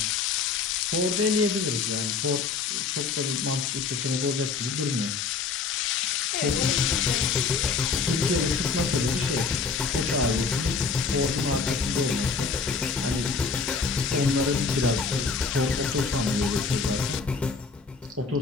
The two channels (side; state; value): right; quieter; 4.9 dB